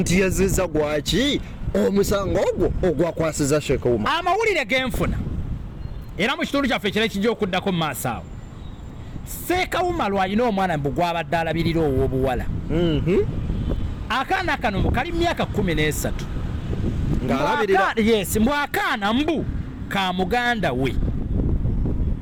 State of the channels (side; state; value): both; identical; correlation 1.00